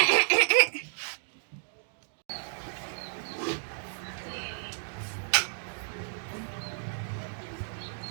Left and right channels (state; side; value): silent; left; digital silence